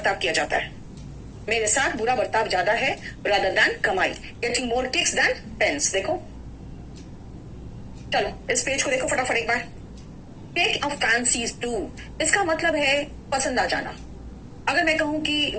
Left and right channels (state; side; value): identical; both; correlation 1.00